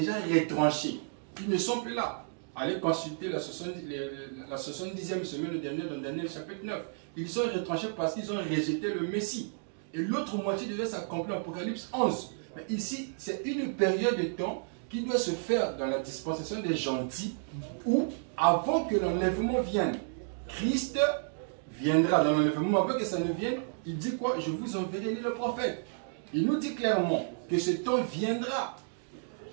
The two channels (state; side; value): silent; left; digital silence